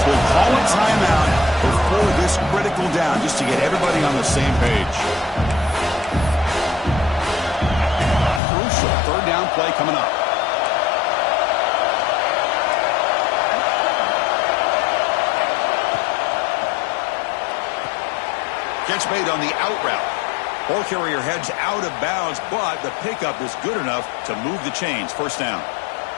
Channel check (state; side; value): drops out; right; at 8.4 s